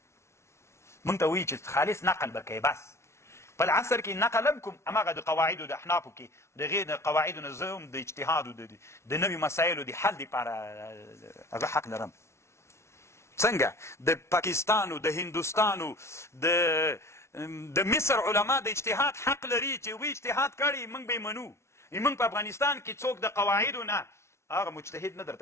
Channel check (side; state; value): right; late; 0.13 ms